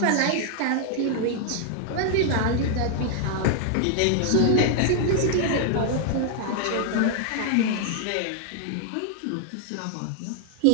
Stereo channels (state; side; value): different; both; correlation 0.00